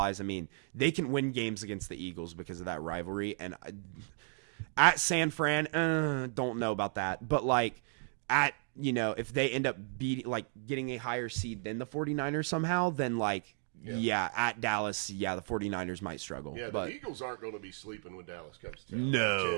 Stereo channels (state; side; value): silent; left; 55 dB below the other